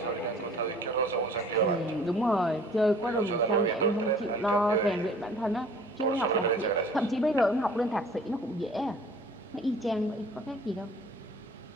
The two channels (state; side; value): normal; both; correlation 0.51